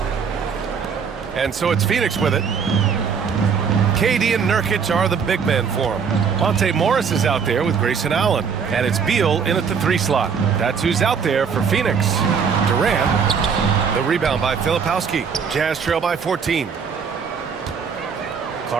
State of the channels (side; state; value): left; quieter; 6.4 dB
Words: And so it's Phoenix with it. KD and Nurkic are the big men for him. Monte Morris is out there with Grayson Allen. And it's Beal in at the 3 slot. That's who's out there for Phoenix. Durant. The rebound by Filipowski. Jazz trail by 14.